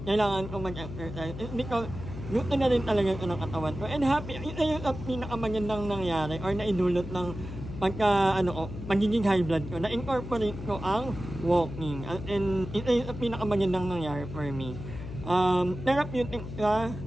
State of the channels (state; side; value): noise; left; hum, 9 dB below the sound